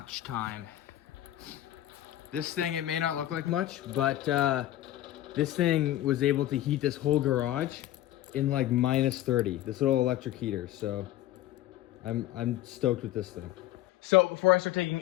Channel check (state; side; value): quieter; right; 14.0 dB